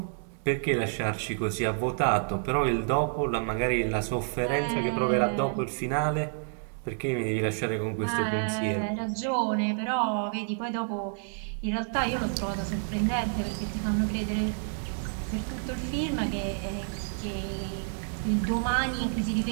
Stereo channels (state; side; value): silent; left; digital silence